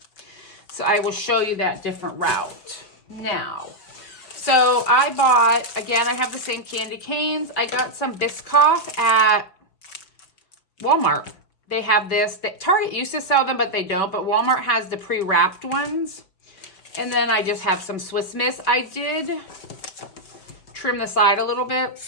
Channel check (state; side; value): late; right; 5.2 ms